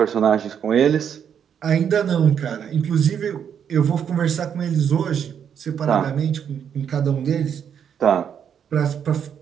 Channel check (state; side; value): quieter; left; 8.2 dB